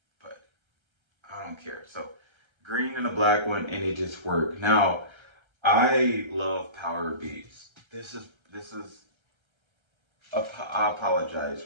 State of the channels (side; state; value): left; late; 1.3 ms